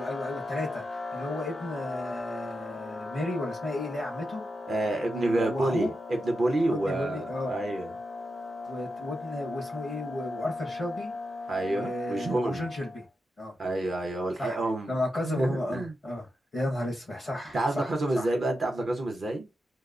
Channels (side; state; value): both; normal; correlation 0.88